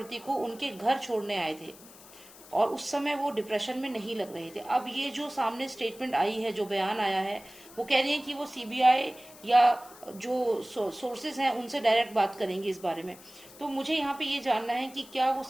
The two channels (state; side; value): noise; left; hiss, 20 dB below the sound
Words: को उनके घर छोड़ने आए थे और उस समय वो डिप्रेशन में नहीं लग रहे थे। अब ये जो सामने स्टेटमेंट आई है, जो बयान आया है, वो कह रही है कि वो सीबीआई या जो सोर्सेज हैं उनसे डायरेक्ट बात करेंगे इस बारे में। तो मुझे यहाँ पे ये जानना है कि क्या वो